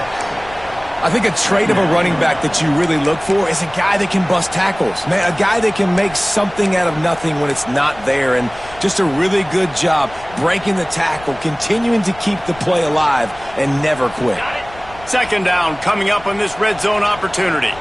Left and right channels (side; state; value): left; noise; rumble, 20 dB below the sound